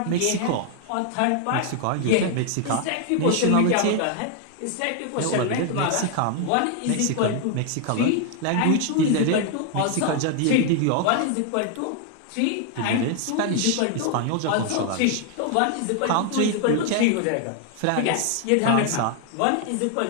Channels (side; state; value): both; different; correlation 0.00